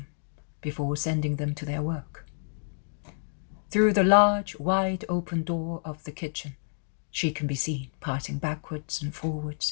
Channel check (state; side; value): silent; right; digital silence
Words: before sending them to their work. Through the large, wide open door of the kitchen, she can be seen passing backwards and forwards